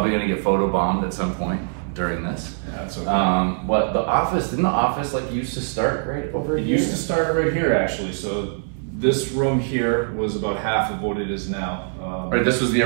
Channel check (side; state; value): left; silent; 62 dB below the other